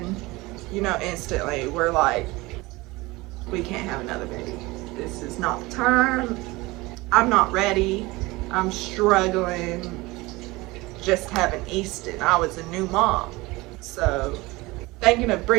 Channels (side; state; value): left; quieter; 21.8 dB